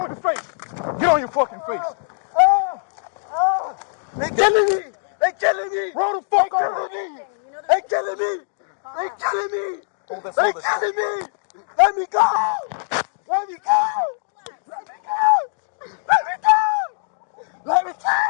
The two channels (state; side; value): silent; right; digital silence